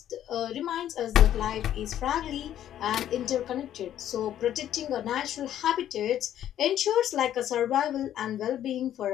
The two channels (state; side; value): quieter; right; 11.3 dB